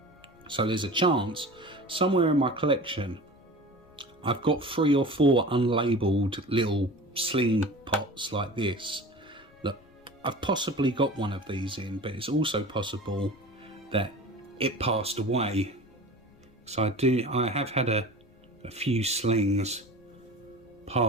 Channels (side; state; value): left; noise; rumble, 29 dB below the sound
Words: So there's a chance somewhere in my collection I've got 3 or 4 unlabeled little sling pots like this that I've possibly got one of these in, but it's also possible that it passed away. So I have had a few slings